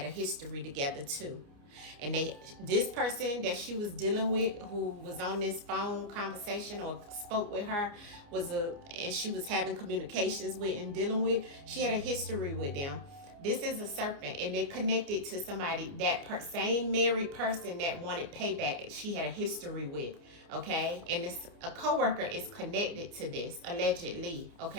a history together too. And this person that she was dealing with, who was on this phone conversation or spoke with her, and she was having communications with and dealing with, she had a history with them. This is a serpent, and they connected to somebody, that same married person that wanted payback, she had a history with, okay? And a coworker is connected to this, allegedly,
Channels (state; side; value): late; left; 29 ms